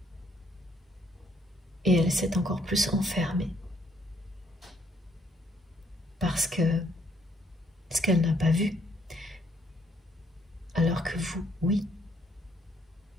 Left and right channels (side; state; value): both; normal; correlation 0.68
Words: et elle s'est encore plus enfermée parce que ce qu'elle n'a pas vu, alors que vous, oui,